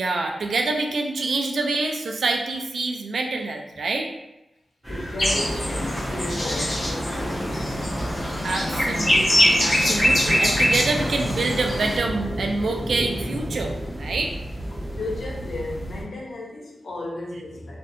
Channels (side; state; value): both; normal; correlation 0.91